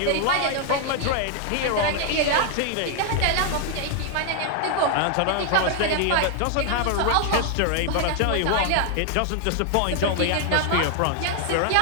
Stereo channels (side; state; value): both; different; correlation 0.00